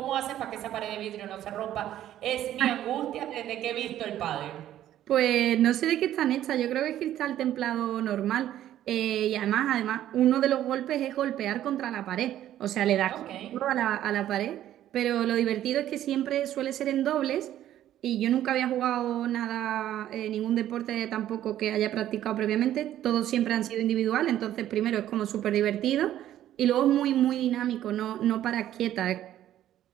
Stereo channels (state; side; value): quieter; left; 12.2 dB